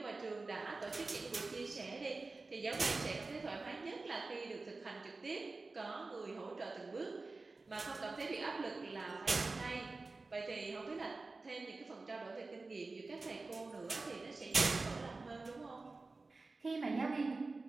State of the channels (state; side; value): quieter; left; 3.6 dB